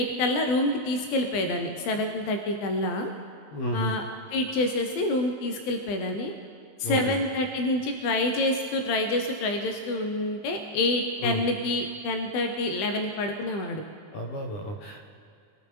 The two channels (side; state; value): right; late; 20 ms